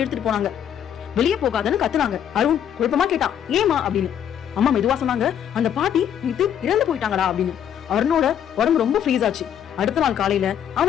எடுத்துட்டு போனாங்க. வெளியே போகாதன்னு கத்துனாங்க. அருண் குழப்பமா கேட்டான், ஏமா அப்படின்னு. அம்மா மெதுவா சொன்னாங்க, அந்த பாட்டி இது இறந்து போயிட்டாங்களா அப்படின்னு. அருணோட உடம்பு ரொம்ப ஃப்ரீஸ் ஆச்சு. அடுத்த நாள் காலையில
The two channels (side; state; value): right; quieter; 9.3 dB